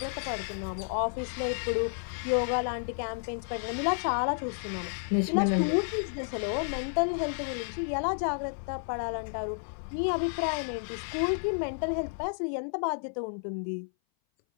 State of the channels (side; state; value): right; silent; 57 dB below the other